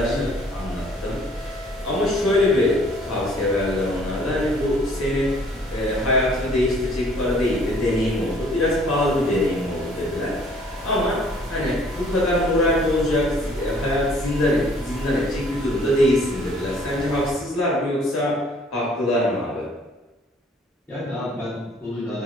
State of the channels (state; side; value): normal; both; correlation 0.58